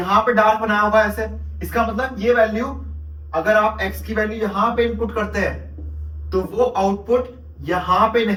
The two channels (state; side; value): identical; both; correlation 1.00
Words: पे डार्क बनाया होगा ऐसे। इसका मतलब ये वैल्यू, अगर आप x की वैल्यू यहां पे इनपुट करते हैं तो वो आउटपुट यहां पे